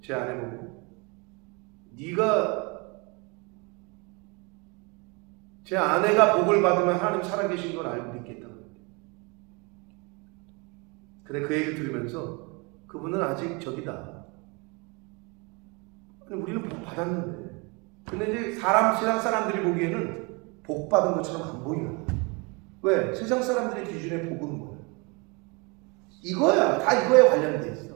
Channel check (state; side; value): quieter; left; 29.7 dB